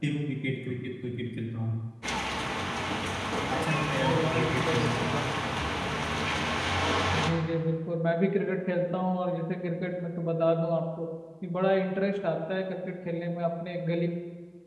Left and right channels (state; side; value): identical; both; correlation 1.00